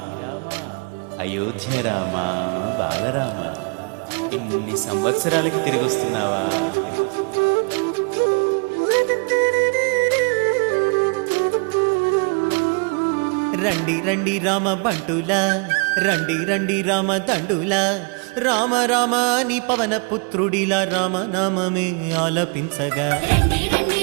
అయోధ్య రామా బాలరామ, ఇన్ని సంవత్సరాలకి తిరిగి వస్తున్నావా? రండి రండి రామ బంటులా, రండి రండి రామ దండులా, రామ రామ నీ పవన పుత్రుడిలా రామనామమే ఆలపించగా. రండి రండి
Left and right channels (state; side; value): quieter; left; 35.4 dB